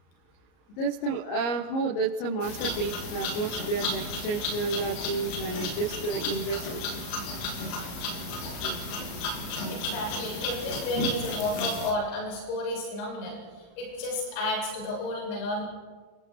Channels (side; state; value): right; late; 35 ms